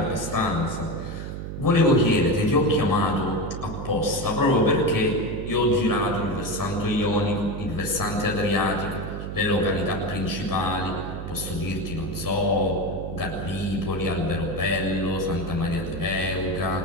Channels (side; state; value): right; noise; hum, 7 dB below the sound